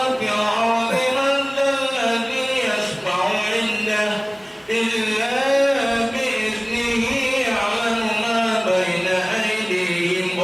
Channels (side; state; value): both; identical; correlation 1.00